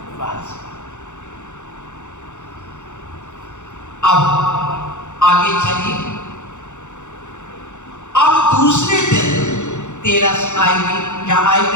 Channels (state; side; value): late; right; 0.84 ms